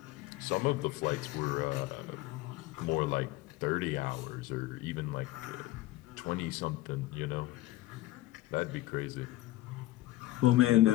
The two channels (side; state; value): right; quieter; 16.8 dB